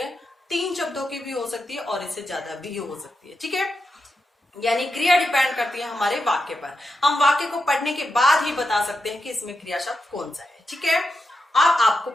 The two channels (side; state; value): both; normal; correlation 0.88